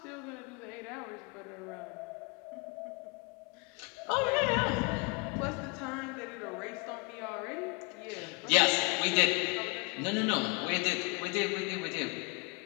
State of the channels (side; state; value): right; quieter; 30.1 dB